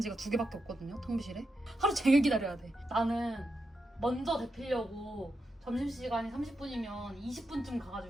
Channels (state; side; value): normal; both; correlation 0.86